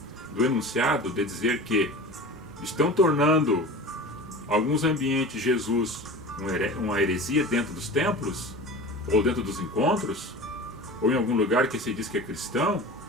do enunciado de dizer que estão tornando alguns ambientes Jesus uma heresia dentro dos templos, ou dentro dos encontros, ou em algum lugar que se diz que é cristão,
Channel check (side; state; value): both; normal; correlation 0.35